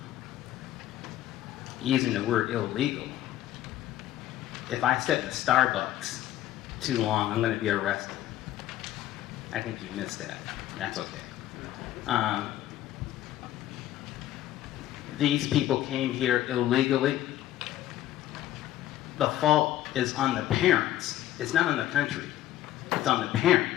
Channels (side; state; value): right; quieter; 13.4 dB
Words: using the word illegal. If I sit in a Starbucks too long, I'm going to be arrested. I think you missed that. That's okay. These people came here illegally. The fault is on the parents. It's not on the country. It's on the parents.